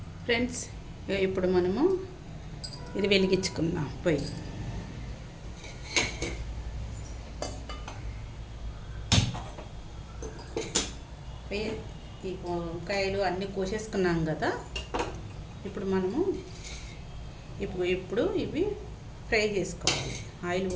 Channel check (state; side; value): identical; both; correlation 1.00